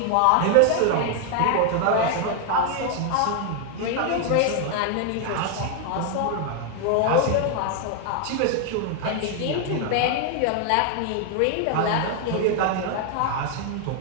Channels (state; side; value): different; both; correlation 0.00